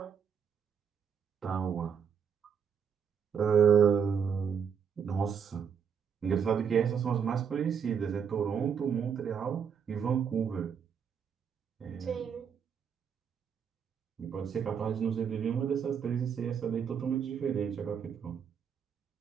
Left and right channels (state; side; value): quieter; left; 7.2 dB